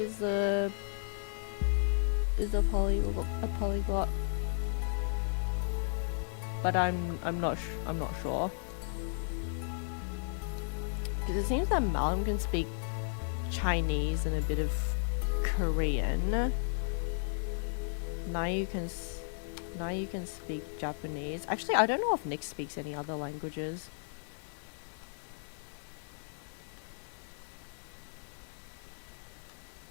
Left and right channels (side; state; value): right; silent; 55 dB below the other